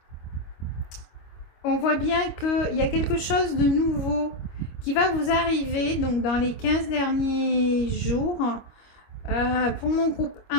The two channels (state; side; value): late; right; 25 ms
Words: On voit bien qu'il y a quelque chose de nouveau qui va vous arriver donc dans les 15 derniers jours. Pour mon groupe